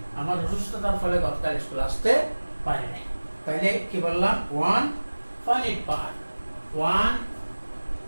আমার অসুস্থতার ফলে গতকাল স্কুল আসতে পারিনি। তাহলে কি বললাম, one finite part, one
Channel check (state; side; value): inverted; both; correlation -1.00